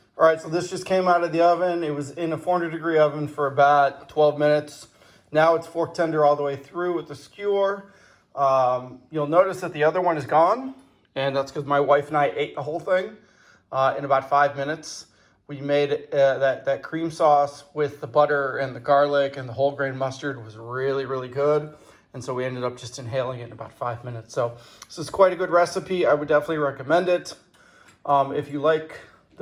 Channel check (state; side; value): identical; both; correlation 1.00